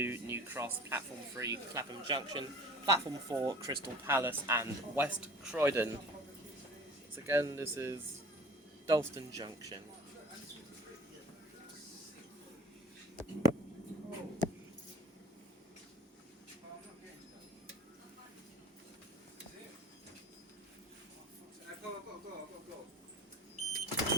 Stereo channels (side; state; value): both; normal; correlation 0.44